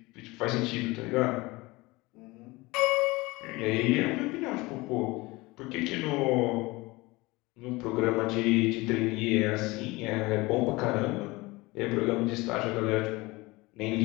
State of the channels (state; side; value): quieter; right; 22.3 dB